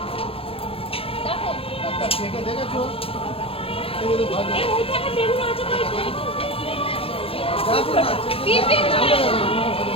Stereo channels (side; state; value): right; late; 0.27 ms